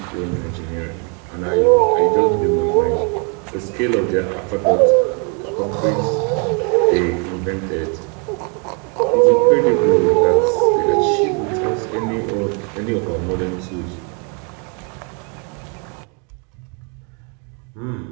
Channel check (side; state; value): left; quieter; 36.7 dB